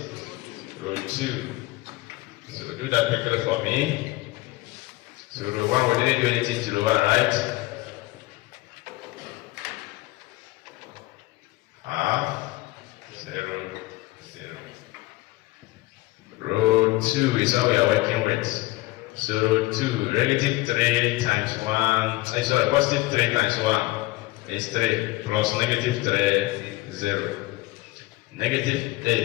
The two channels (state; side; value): quieter; right; 19.9 dB